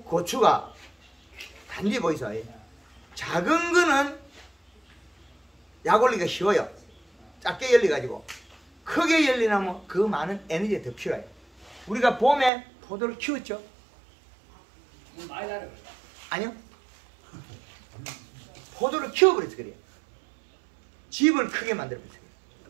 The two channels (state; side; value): drops out; left; at 12.5 s